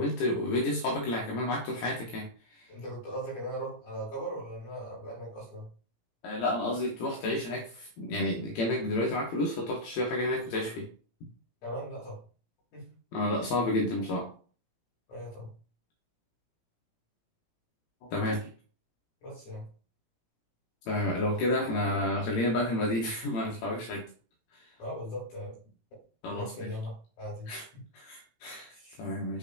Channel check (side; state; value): right; late; 18 ms